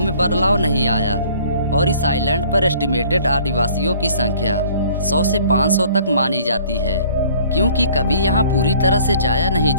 बदलाव नहीं आया और इस आइलैंड पर एस्टिमेटेड आदिवासियों की संख्या 100 से 500 तक मानी जाती है, क्योंकि कभी यहाँ पूरी तरह से जाया नहीं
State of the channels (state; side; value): inverted; both; correlation -0.54